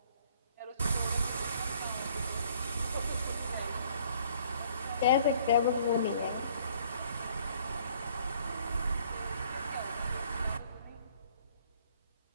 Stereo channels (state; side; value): inverted; both; correlation -0.60